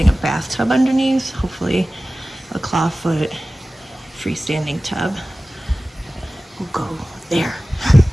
a bathtub underneath, hopefully a clawfoot freestanding tub will go there.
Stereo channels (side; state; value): both; normal; correlation 0.96